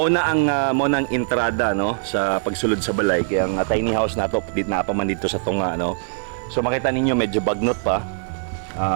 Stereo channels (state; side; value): silent; left; digital silence